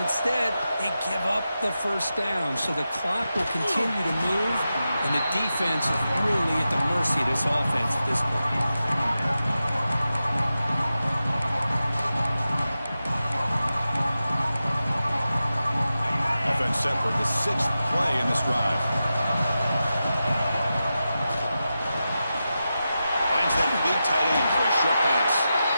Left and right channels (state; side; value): inverted; both; correlation -0.91